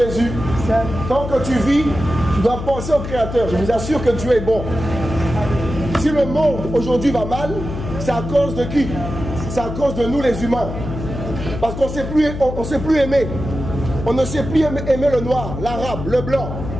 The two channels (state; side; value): noise; left; hum, 7 dB below the sound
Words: Tant que tu vis, tu dois penser au Créateur. Je vous assure que Dieu est bon. Si le monde aujourd'hui va mal, c'est à cause de qui? C'est à cause de nous les humains. Parce qu'on ne sait plus aimer. On ne sait plus aimer le noir, l'arabe, le blanc.